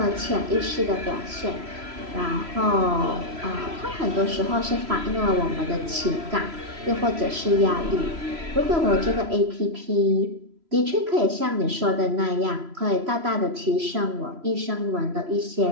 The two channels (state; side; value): late; left; 3.0 ms